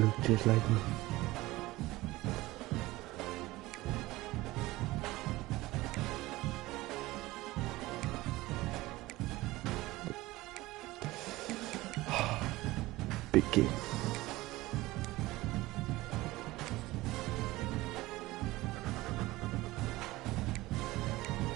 just like me. Big game.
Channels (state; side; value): quieter; left; 18.9 dB